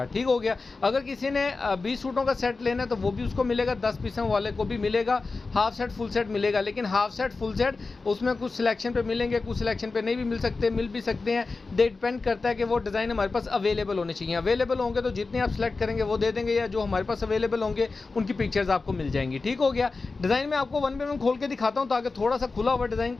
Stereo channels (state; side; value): quieter; right; 3.9 dB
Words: ठीक हो गया। अगर किसी ने 20 सूटों का सेट लेना है तो वो भी उसको मिलेगा, 10 पीसों वाले को भी मिलेगा। हाफ सेट फुल सेट मिलेगा, लेकिन हाफ सेट फुल सेट उसमें कुछ सिलेक्शन पे मिलेंगे, कुछ सिलेक्शन पे नहीं भी मिल सकते, मिल भी सकते हैं। डिपेंड करता है कि वो डिज़ाइन हमारे पास अवेलेबल होने चाहिए। अवेलेबल होंगे तो जितने आप सेलेक्ट करेंगे वो दे देंगे, या जो हमारे पास अवेलेबल होंगे उनकी पिक्चर्स आपको मिल जाएंगी। ठीक हो गया। डिज़ाइन में आपको वन बाय वन खोल के दिखाता हूँ ताकि थोड़ा सा खुला हुआ डिज़ाइन